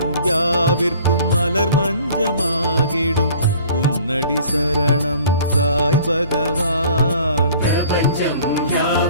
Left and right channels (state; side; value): inverted; both; correlation -0.50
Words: யாவிற்கும் மலர் மஞ்சமாகிடும் உன்னடி சரணம் சாய் பகவான். பிரபஞ்சம்